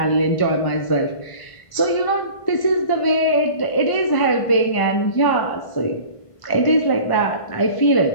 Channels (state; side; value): late; right; 1.5 ms